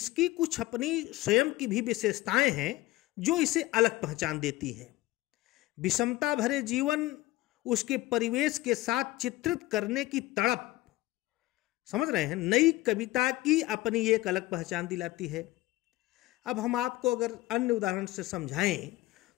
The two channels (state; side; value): quieter; right; 18.2 dB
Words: कुछ अपनी स्वयं की भी विशेषताएं हैं जो इसे अलग पहचान देती हैं। विषमता भरे जीवन, उसके परिवेश के साथ चित्रित करने की तड़प, समझ रहे हैं, नई कविता की अपनी एक अलग पहचान दिलाती है। अब हम आपको अगर अन्य उदाहरण से समझाएं